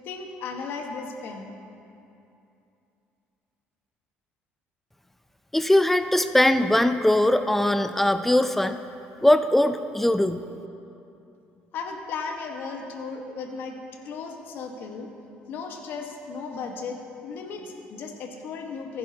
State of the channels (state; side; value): normal; both; correlation 0.93